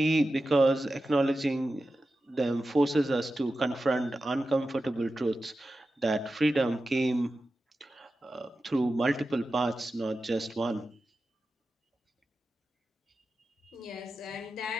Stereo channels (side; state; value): both; normal; correlation 0.93